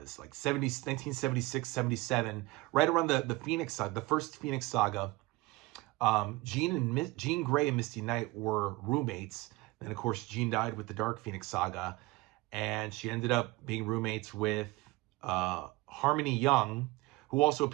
1976, 77, right around the Phoenix Saga, the first Phoenix Saga, Jean Grey and Misty Knight were roommates. And of course, Jean died with the Dark Phoenix Saga. And she ended up being roommates with Harmony Young, who also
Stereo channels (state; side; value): quieter; left; 21.3 dB